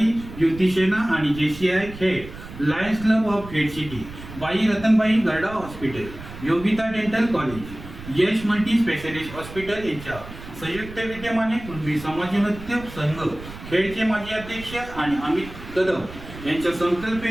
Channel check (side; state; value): right; noise; rumble, 14 dB below the sound